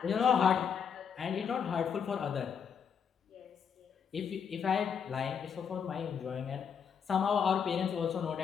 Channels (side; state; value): right; quieter; 7.1 dB